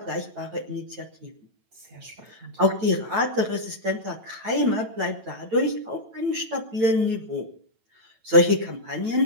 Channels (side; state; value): left; late; 9.0 ms